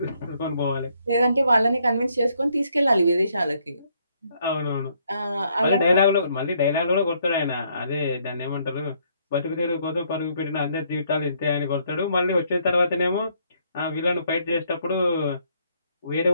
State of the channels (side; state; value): both; inverted; correlation -0.70